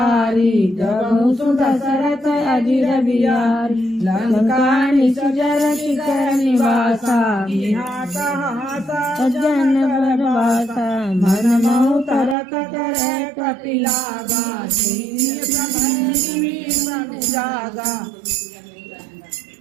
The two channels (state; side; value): drops out; left; at 12.4 s